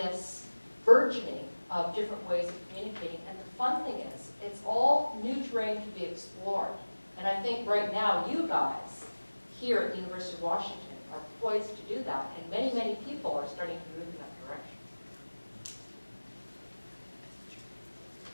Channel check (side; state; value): both; inverted; correlation -1.00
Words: burgeoning of different ways of communicating. And the fun thing is, it's all new terrain to be explored. And I think right now, you guys here at the University of Washington are poised to do that, and many, many people are starting to move in that direction.